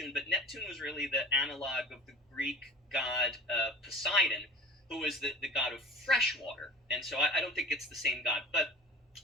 but Neptune was really the analog of the Greek god Poseidon, who was the god of fresh water, and so I don't think it's the same god. But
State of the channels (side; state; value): both; normal; correlation 0.39